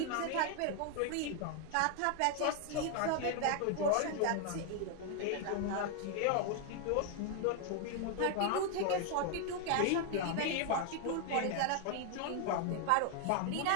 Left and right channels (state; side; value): different; both; correlation 0.00